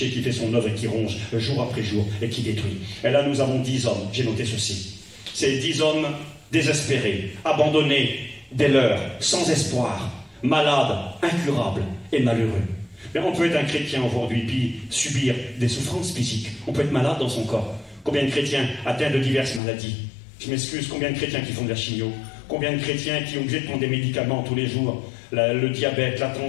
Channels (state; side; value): drops out; right; at 19.6 s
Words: qui fait son œuvre et qui ronge jour après jour et qui détruit. Et là, nous avons 10 hommes. J'ai noté ceci. Ces 10 hommes désespérés, abandonnés dès l'heure, sans espoir, malades, incurables et malheureux. Mais on peut être un chrétien aujourd'hui puis subir des souffrances physiques. On peut être malade dans son corps. Combien de chrétiens atteints de diverses maladies? Je m'excuse, combien de chrétiens qui font de la chimio? Combien de chrétiens qui ont obligé de prendre des médicaments tous les jours? Le diabète, la